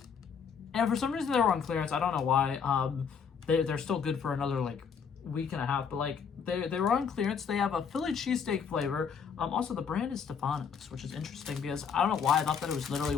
And for some reason they were on clearance. I don't know why. They're still good for another like week and a half, but like they were on clearance. They have a Philly cheesesteak flavor. Also the brand is Stefano's, which is interesting because I don't know why I thought that it was literally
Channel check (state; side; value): quieter; right; 6.6 dB